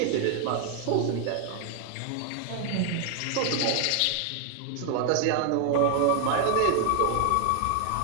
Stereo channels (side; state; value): both; different; correlation 0.00